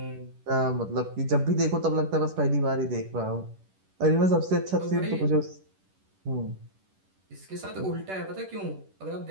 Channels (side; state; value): left; late; 10 ms